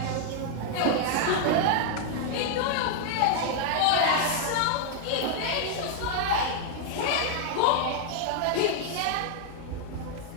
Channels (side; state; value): both; different; correlation 0.00